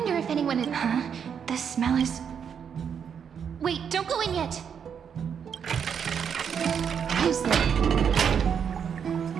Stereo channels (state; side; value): quieter; left; 7.5 dB